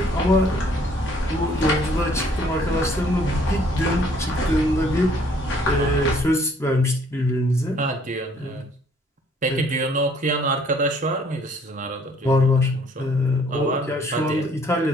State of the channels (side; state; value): both; normal; correlation 0.61